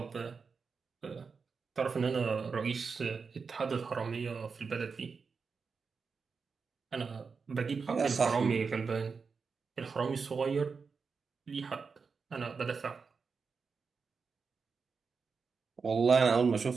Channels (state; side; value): quieter; left; 5.2 dB